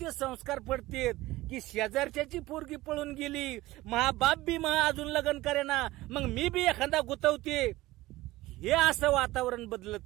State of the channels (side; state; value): left; quieter; 18.1 dB